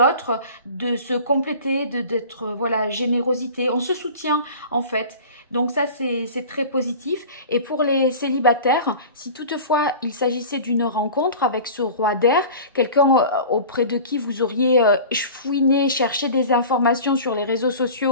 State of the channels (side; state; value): both; inverted; correlation -0.38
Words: de se compléter, d'être, voilà, générosité. On se soutient en fait. Donc ça, c'est très positif. Et pour les célibataires, si toutefois il s'agissait d'une rencontre avec ce roi d'air, quelqu'un auprès de qui vous auriez fouiné, cherché des informations sur les réseaux